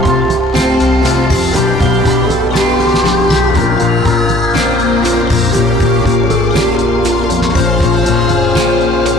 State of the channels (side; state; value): both; normal; correlation 0.57